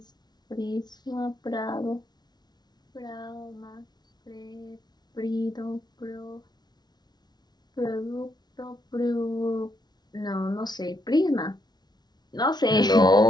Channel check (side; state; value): right; late; 0.20 ms